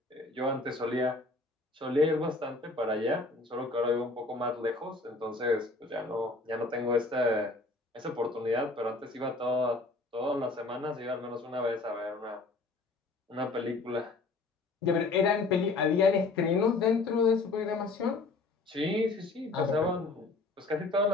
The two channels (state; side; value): quieter; right; 3.5 dB